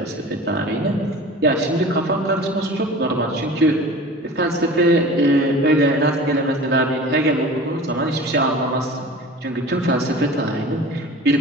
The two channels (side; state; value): both; normal; correlation 0.39